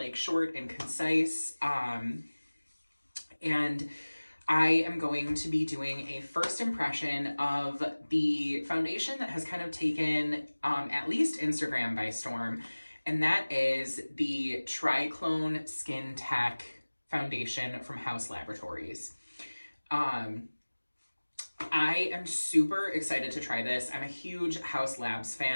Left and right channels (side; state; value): both; inverted; correlation -1.00